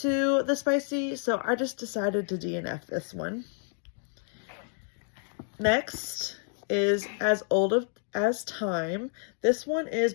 the spicy, so I just decided to DNF this one. Next is As Old as Time. This one is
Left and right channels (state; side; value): silent; right; 58 dB below the other